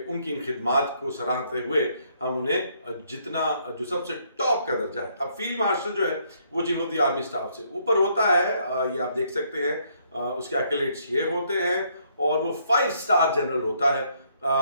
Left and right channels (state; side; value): inverted; both; correlation -0.69